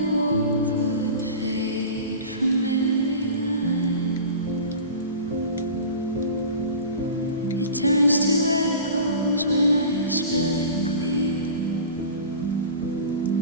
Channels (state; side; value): inverted; both; correlation -0.35